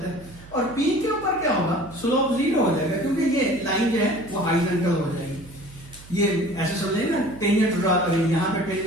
है, और पी के ऊपर क्या होगा, स्लोप जीरो हो जाएगा, क्योंकि ये लाइन जो है वो हॉरिजॉन्टल हो जाएगी। ये ऐसे समझेंगे ना, टेंजेंट ड्रा करेंगे, यहाँ पे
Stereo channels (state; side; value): noise; right; hum, 19 dB below the sound